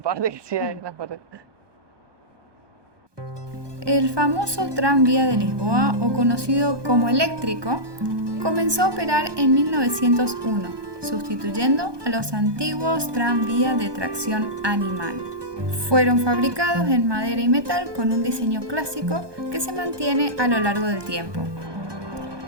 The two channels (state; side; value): late; left; 1.2 ms